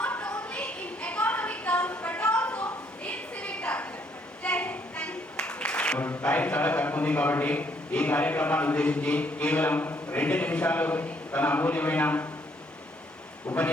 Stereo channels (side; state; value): both; normal; correlation 0.68